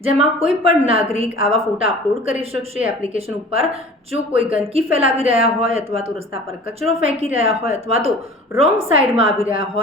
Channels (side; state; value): both; normal; correlation 0.43